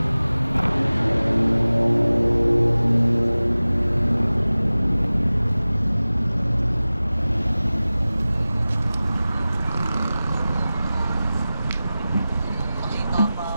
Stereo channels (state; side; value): inverted; both; correlation -0.97